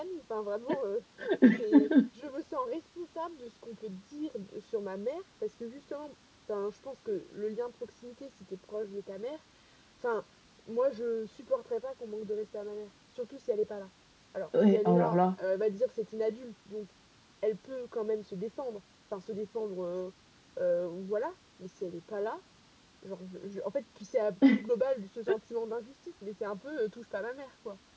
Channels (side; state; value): both; identical; correlation 1.00